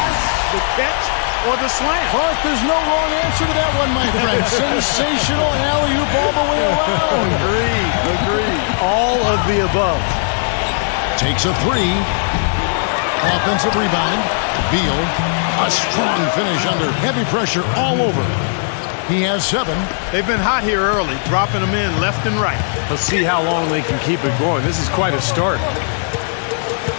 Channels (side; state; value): right; silent; digital silence